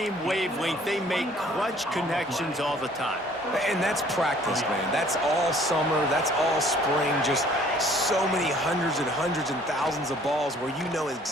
wavelength, they make clutch connections all the time. And that's practice, man. That's all summer. That's all spring. Just so many hundreds and hundreds and thousands of balls where you know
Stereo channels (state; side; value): normal; both; correlation 0.56